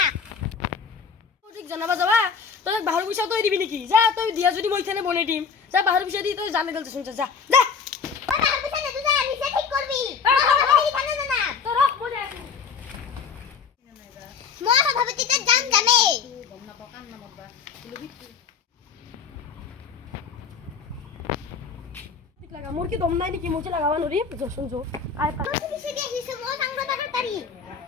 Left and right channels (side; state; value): right; quieter; 6.1 dB